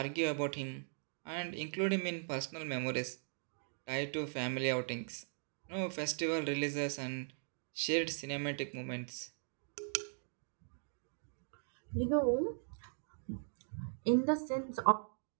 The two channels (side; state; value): left; silent; digital silence